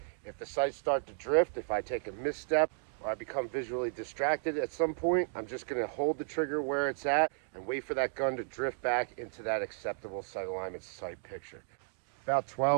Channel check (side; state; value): left; silent; digital silence